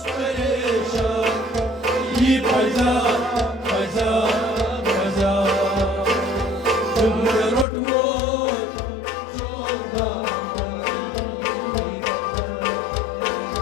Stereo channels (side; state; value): right; drops out; at 7.7 s